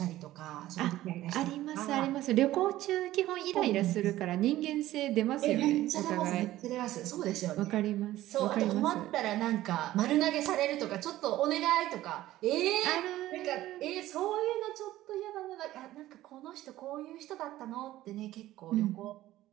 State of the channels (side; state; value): left; quieter; 15.1 dB